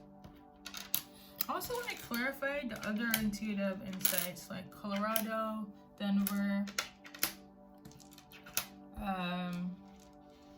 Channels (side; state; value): both; identical; correlation 1.00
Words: other intuitive insights like Colorado, Denver,